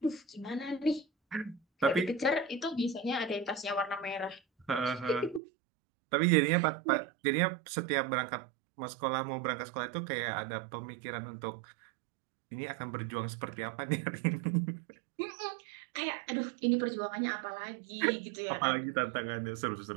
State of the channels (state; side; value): drops out; left; at 5.4 s